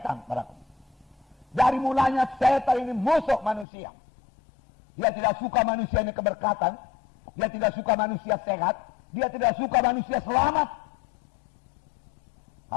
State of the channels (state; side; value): drops out; right; at 3.7 s